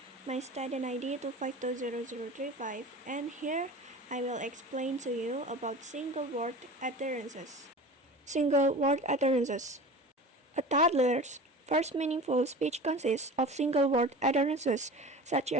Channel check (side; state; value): both; normal; correlation 0.35